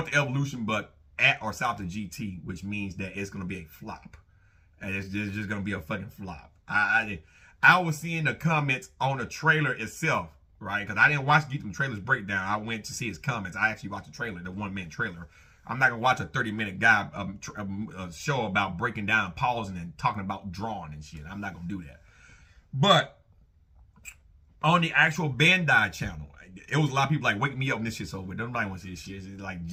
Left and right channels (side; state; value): both; identical; correlation 1.00